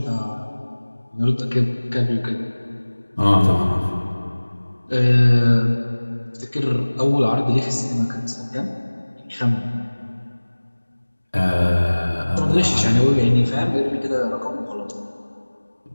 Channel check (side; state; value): both; inverted; correlation -1.00